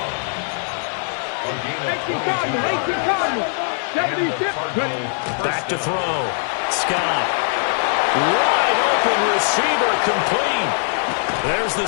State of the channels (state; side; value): silent; right; 65 dB below the other